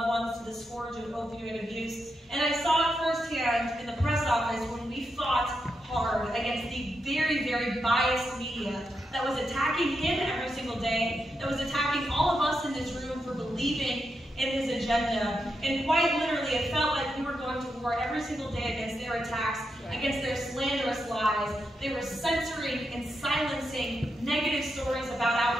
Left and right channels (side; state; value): both; normal; correlation 0.84